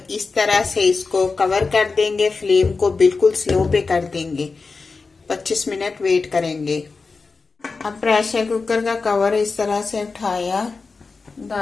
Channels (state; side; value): quieter; right; 4.3 dB